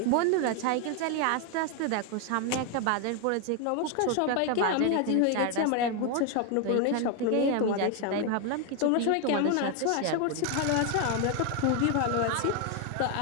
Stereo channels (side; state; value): both; different; correlation 0.01